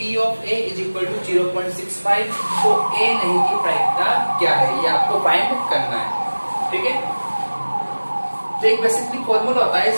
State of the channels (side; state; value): both; inverted; correlation -1.00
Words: of A is equal to 0.65 तो A नहीं की प्रायिकता क्या है, ये आपको फाइंड करना है। ठीक है, तो एक बेसिकली फॉर्मूला होता है